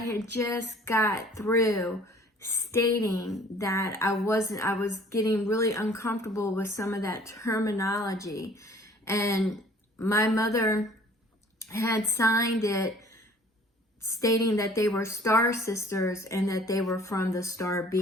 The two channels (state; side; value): normal; both; correlation 0.53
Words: just got through stating that I was getting really uncomfortable with some of that terminology, and my mother had signed it stating that they were star sisters and that they were from the star